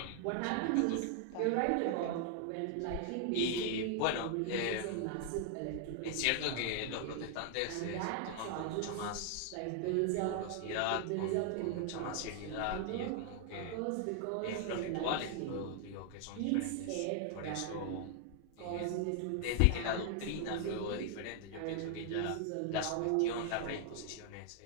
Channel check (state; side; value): different; both; correlation 0.00